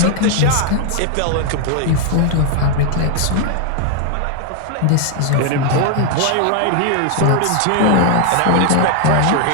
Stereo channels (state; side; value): different; both; correlation 0.00